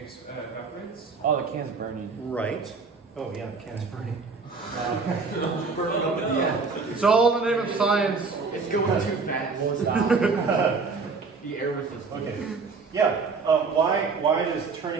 evaporates. Oh, the can's burning. Right. Oh yeah, the can's burning. It's all in the name of science. It's going too fast. The air resistance. Okay. Yeah. Why does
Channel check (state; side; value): quieter; left; 4.6 dB